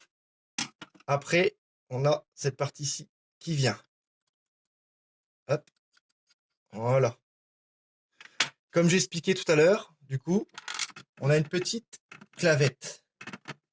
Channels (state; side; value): identical; both; correlation 1.00